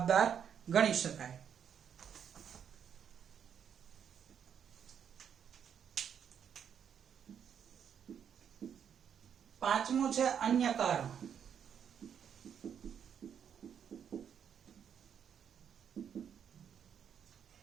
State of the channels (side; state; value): left; quieter; 8.1 dB